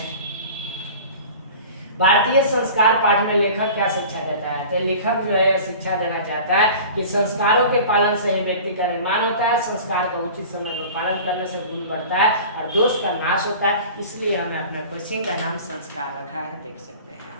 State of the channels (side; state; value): both; inverted; correlation -0.40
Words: भारतीय संस्कार पाठ में लेखक क्या शिक्षा देता है? तो लेखक जो है शिक्षा देना चाहता है कि संस्कारों के पालन से ही व्यक्ति का निर्माण होता है, संस्कार का उचित समय पर पालन करने से गुण बढ़ता है और दोष का नाश होता है। इसलिए हमने अपने कोचिंग का नाम संस्कार रखा है, देख सकते हैं